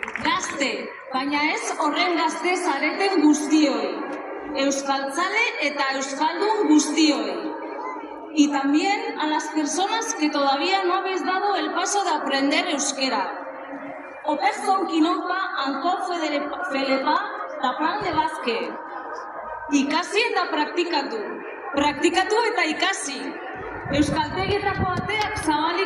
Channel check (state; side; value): identical; both; correlation 1.00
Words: Baina ez horren gazte zareten guztioi, euskaltzale eta euskaldun guztioi. Y también a las personas que todavía no habéis dado el paso de aprender euskera. Operzon kinopa anko felepa tapan de bazke. Ikasi eta praktikatu. Praktikatu eta ikasi. Euskaltegietako ateak